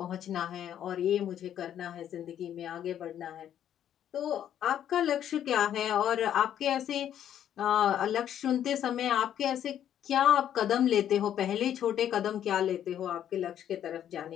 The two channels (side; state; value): right; quieter; 10.3 dB